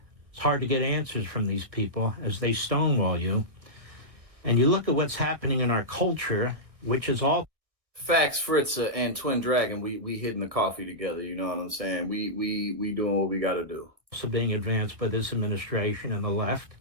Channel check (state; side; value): late; left; 1.6 ms